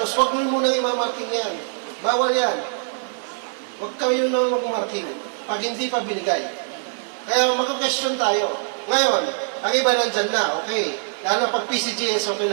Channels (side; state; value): left; silent; 63 dB below the other